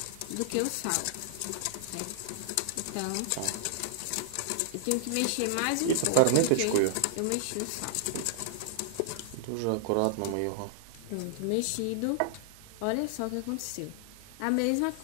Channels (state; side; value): different; both; correlation -0.01